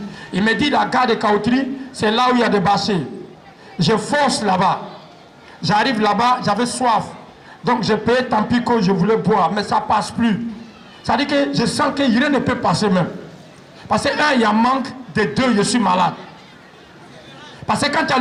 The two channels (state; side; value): identical; both; correlation 1.00